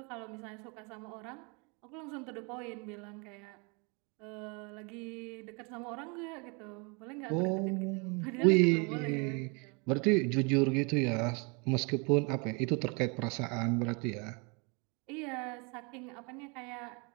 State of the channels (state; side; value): quieter; left; 32.0 dB